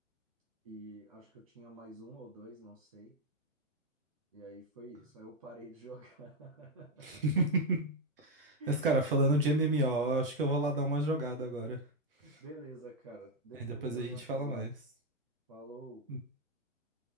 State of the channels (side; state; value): both; normal; correlation 0.04